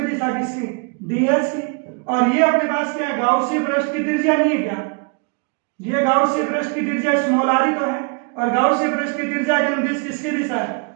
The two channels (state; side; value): quieter; left; 35.4 dB